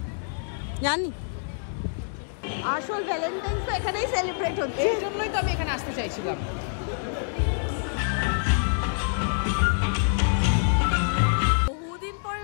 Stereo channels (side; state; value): right; silent; digital silence